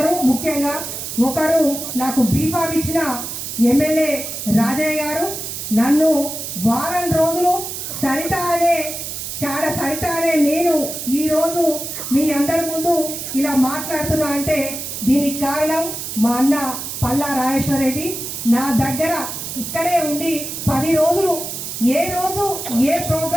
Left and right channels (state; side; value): noise; right; hiss, 6 dB below the sound